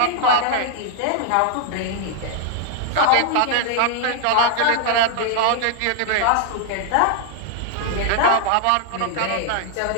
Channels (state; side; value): different; both; correlation 0.00